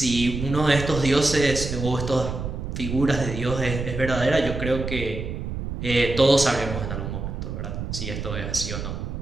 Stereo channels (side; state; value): right; noise; rumble, 5 dB below the sound